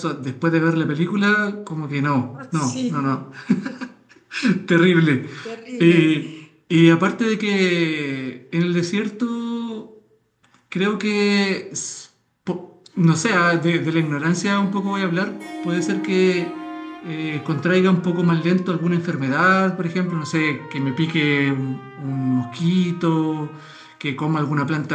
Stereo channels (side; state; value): both; identical; correlation 1.00